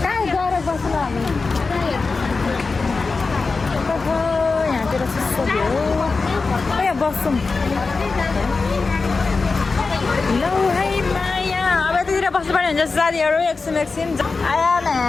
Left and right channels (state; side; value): quieter; right; 4.2 dB